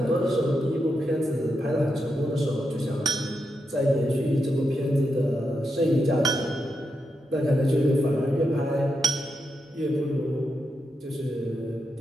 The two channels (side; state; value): both; normal; correlation 0.85